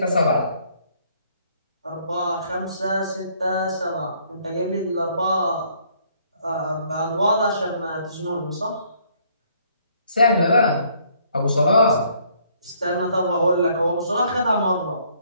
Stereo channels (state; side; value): inverted; both; correlation -0.65